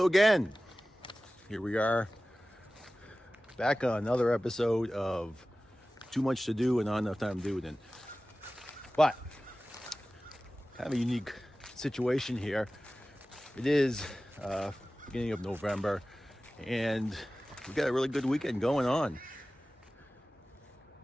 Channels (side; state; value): both; normal; correlation 0.97